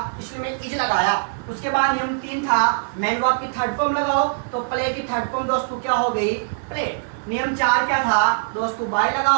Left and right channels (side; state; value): left; silent; digital silence